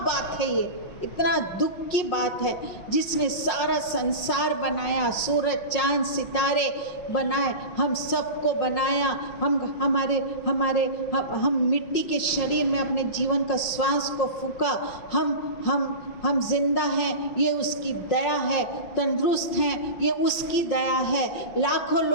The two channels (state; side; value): late; right; 5.5 ms